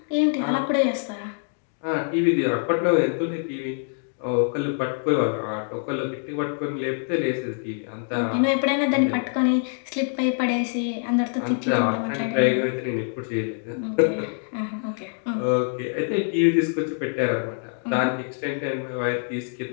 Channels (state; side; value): silent; right; 59 dB below the other